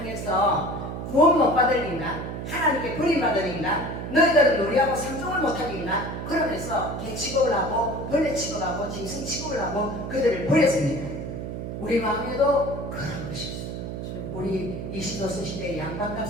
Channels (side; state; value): right; noise; hum, 6 dB below the sound